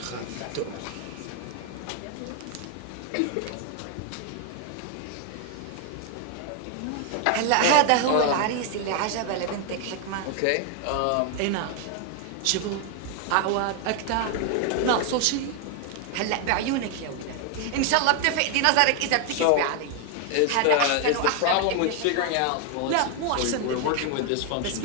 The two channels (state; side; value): different; both; correlation 0.01